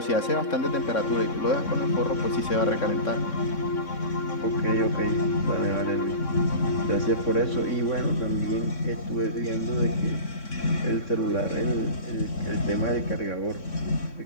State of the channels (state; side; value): late; right; 3.6 ms